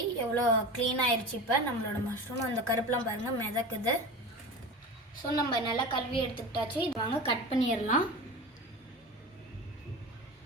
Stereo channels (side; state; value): both; normal; correlation 0.31